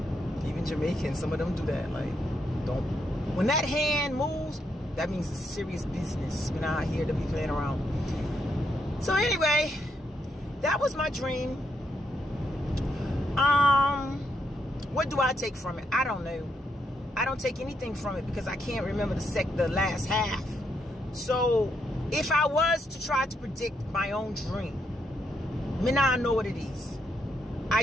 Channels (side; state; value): both; normal; correlation 0.78